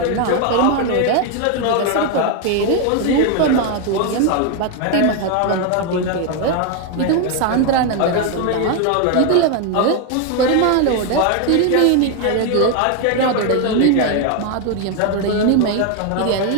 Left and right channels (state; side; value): different; both; correlation 0.01